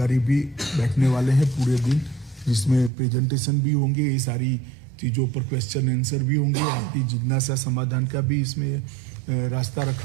भी बैठने वाले हैं पूरे दिन, जिसमें प्रेजेंटेशन भी होंगे, ये सारी चीज़ों पर क्वेश्चन आंसर भी होंगे, आपकी जिज्ञासा समाधान का भी इसमें रास्ता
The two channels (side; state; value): left; drops out; at 2.9 s